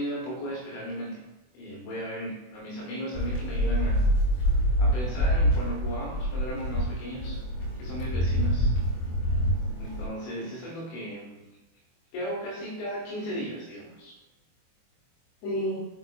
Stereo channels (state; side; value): late; right; 24 ms